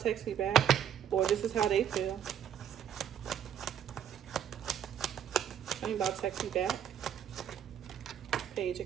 text me back. Or this is how they feel. Tell me about text me back. Page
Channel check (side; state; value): left; quieter; 9.1 dB